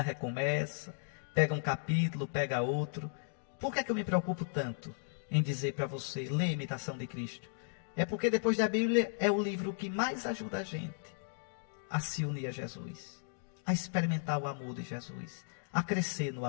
recomeça, pega um capítulo, pega outro. Por que é que eu me preocupo tanto em dizer para você, lê A Imitação de Cristo? É porque depois da Bíblia é o livro que mais ajuda a gente a se unir a Jesus, a experimentar o amor de Jesus, a crescer no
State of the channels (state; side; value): silent; right; digital silence